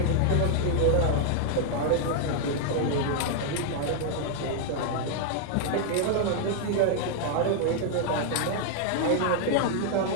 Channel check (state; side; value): different; both; correlation 0.00